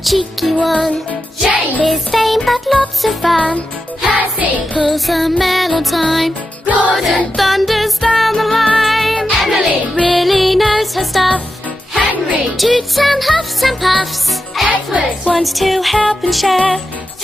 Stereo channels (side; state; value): both; normal; correlation 0.89